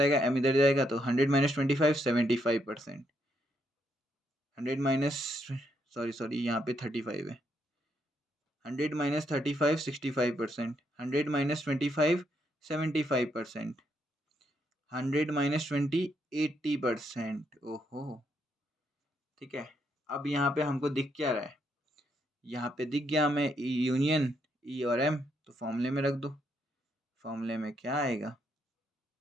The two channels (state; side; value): normal; both; correlation 0.76